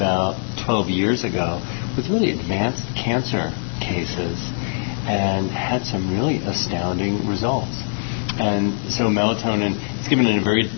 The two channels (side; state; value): right; silent; digital silence